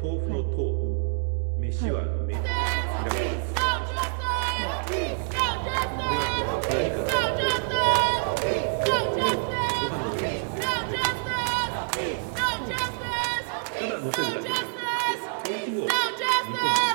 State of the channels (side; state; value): left; silent; digital silence